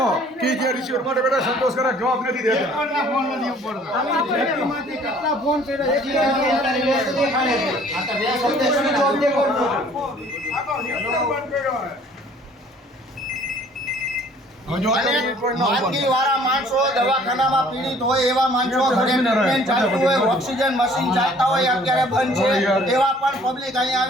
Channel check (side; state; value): both; normal; correlation 0.55